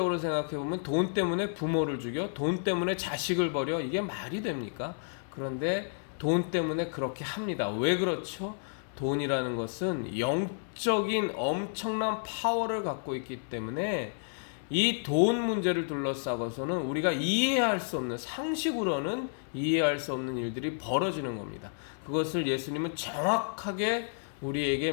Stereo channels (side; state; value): right; silent; 57 dB below the other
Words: 생각해보면 돈 때문에 부모를 죽여, 돈 때문에 자식을 버려, 이게 말이 됩니까? 그런데 돈 때문에 그렇게 합니다. 왜 그렇죠? 돈이라는 것은 영적인 엄청난 파워를 갖고 있기 때문에 이 돈 문제를 둘러싸고서는 우리가 이해할 수 없는, 상식으로는 이해할 수 없는 일들이 벌어지는 겁니다. 그것을 예수님은 정확하게 우리에게